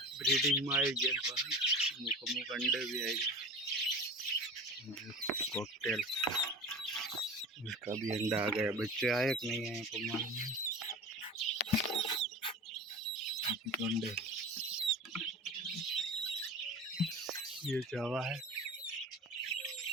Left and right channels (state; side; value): normal; both; correlation 0.34